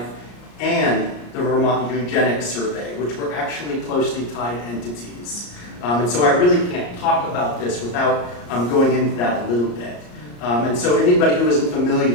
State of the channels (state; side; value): late; right; 34 ms